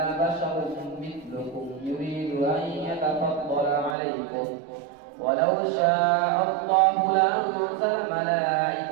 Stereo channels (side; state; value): left; drops out; at 4.0 s